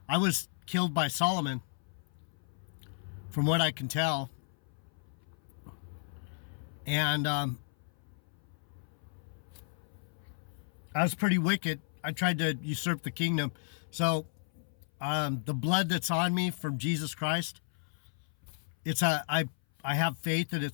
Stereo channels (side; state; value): right; silent; 55 dB below the other